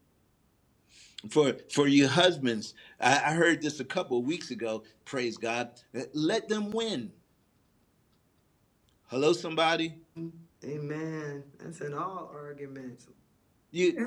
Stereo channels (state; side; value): identical; both; correlation 1.00